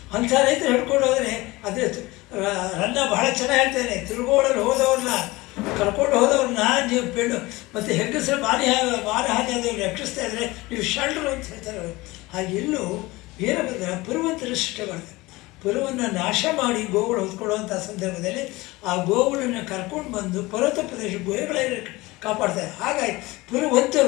ಅಂಥ ರೈತರು ಹಿಡ್ಕೊಂಡು ಹೋದರೆ ಅದೇ ರನ್ನ ಬಹಳ ಚೆನ್ನಾಗಿ ಹೇಳ್ತಾನೆ, ತಿರುಗೋಡಲು ಹೋದವ್ರನ್ನ ಕರ್ಕೊಂಡು ಹೋದವ್ರನ್ನ ನೀವು ಪೆಣ್ಣು ಮತ್ತು ಹೆಂಗಸರು ಮಾನಹಾನಿ ಆದವ್ರು ರಕ್ಷಿಸ್ತಾ ಇದ್ದರೆ ನೀವು ಶಲ್ರು ಅಂತ ಹೇಳ್ತಾರೆ ಅವರು. ಹಾಗೆ ಇಲ್ಲೂ ವೀರಭದ್ರ ಪುರುವಂತರ ಸೃಷ್ಟಿ ಮಾಡ್ತಾರೆ. ಪುರವನ್ನು ನಾಶ ಮಾಡಿ ಗೋವುಗಳು ಹೊತ್ಕೊಳ್ಳುವಂಥ ಸಂದರ್ಭದಲ್ಲಿ ಆ ಗೋವುಗಳನ್ನು ಕರ್ಕೊಂಡು ಬಂದು ಪರ್ವತ ಪ್ರದೇಶ ಗುಹೆಗಳಲ್ಲಿ ಕಾಪಾಡ್ತಾರೆ. ಹಾಗಾಗಿ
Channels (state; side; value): quieter; right; 21.1 dB